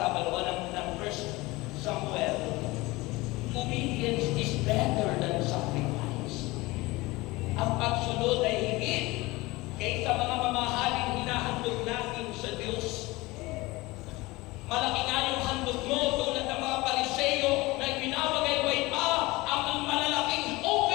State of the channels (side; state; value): right; quieter; 21.5 dB